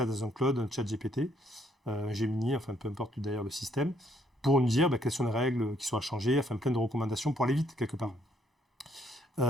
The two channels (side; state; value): both; normal; correlation 0.69